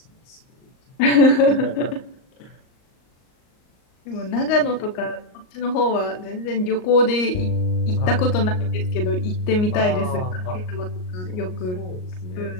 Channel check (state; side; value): late; right; 38 ms